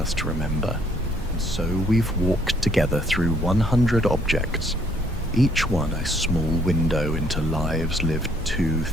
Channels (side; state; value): both; normal; correlation 0.65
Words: to remember. And so we've walked together through 100 objects, each one a small window into lives lived